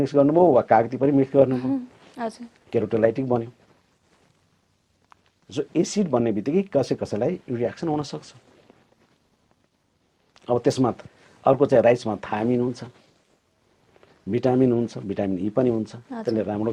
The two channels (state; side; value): identical; both; correlation 1.00